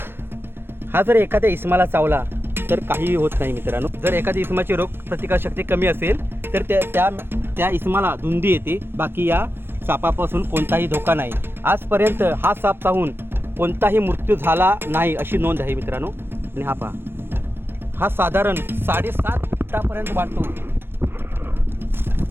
हा जर एखाद्या इस्माला चावला तर काहीही होत नाही मित्रांनो. जर एखाद्या इस्माची रोग प्रतिकारशक्ती कमी असेल तर त्या इस्माला धुंदी येते. बाकी या सापापासून कोणताही धोका नाही. आजपर्यंत हा साप चावून कोणताही मृत्यू झाला नाही अशी नोंद आहे मित्रांनो. आणि हा पहा, हा साधारण 7.5 फुटापर्यंत वाढतो.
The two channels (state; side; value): late; left; 0.10 ms